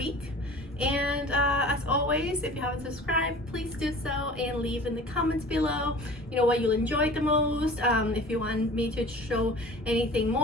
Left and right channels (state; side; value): normal; both; correlation 0.42